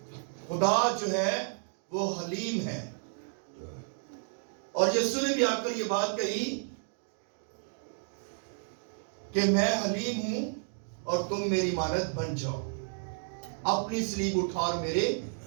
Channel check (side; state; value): left; silent; 57 dB below the other